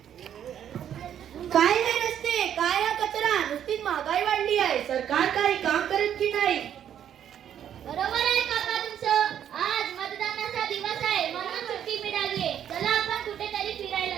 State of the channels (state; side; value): quieter; left; 9.8 dB